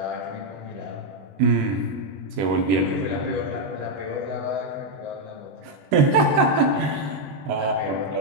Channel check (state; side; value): late; left; 21 ms